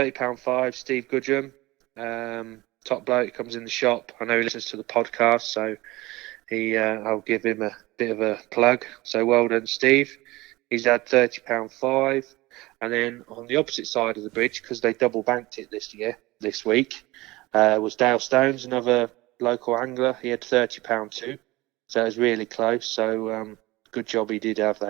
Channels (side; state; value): left; quieter; 20.3 dB